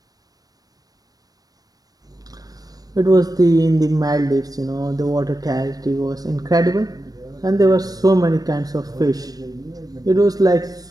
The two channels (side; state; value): left; late; 0.18 ms